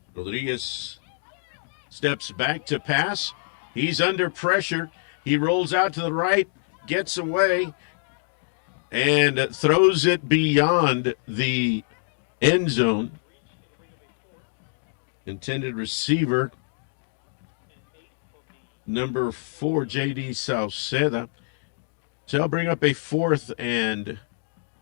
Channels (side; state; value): right; silent; digital silence